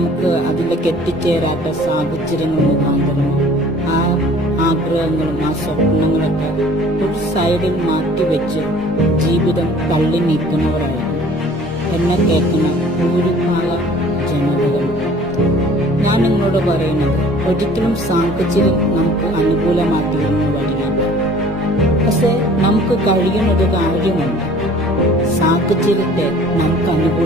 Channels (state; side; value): normal; both; correlation 0.50